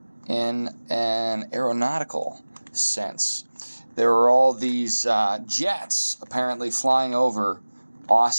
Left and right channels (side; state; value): both; inverted; correlation -1.00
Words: in an aeronautical sense. There are all these jets apparently flying over